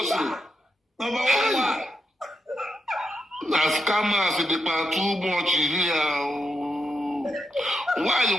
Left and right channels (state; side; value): normal; both; correlation 0.85